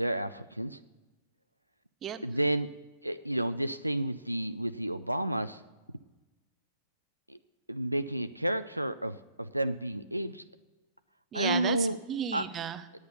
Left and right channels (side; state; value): both; inverted; correlation -0.78